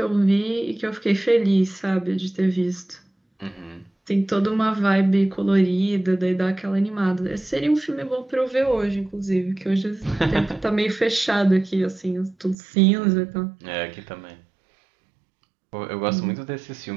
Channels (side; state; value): left; drops out; at 12.6 s